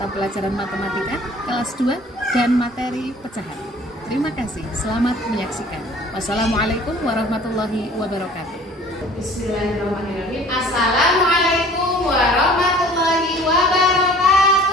pelajaran matematika kelas 2 dan materi pecahan. Terima kasih, selamat menyaksikan. Wassalamualaikum warahmatullahi wabarakatuh. Bismillahirrahmanirrahim. Assalamualaikum warahmatullahi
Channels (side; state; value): both; normal; correlation 0.50